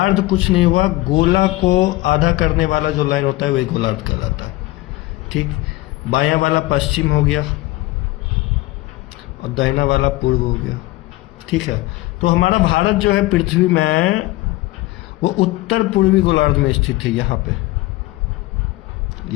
कुछ नहीं हुआ, गोला को आधा करने वाला जो लाइन होता है वही गोलार्ध कहलाता है। ठीक, बायां वाला पश्चिम हो गया और दाहिना वाला पूर्व हो गया। ठीक है, तो हमारा भारत जो है पृथ्वी में वो उत्तर पूर्वी गोलार्ध में स्थित है। यहाँ पे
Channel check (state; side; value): quieter; right; 19.0 dB